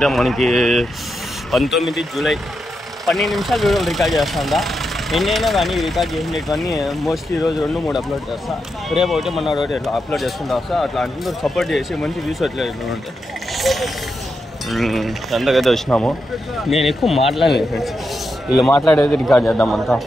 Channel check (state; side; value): normal; both; correlation 0.86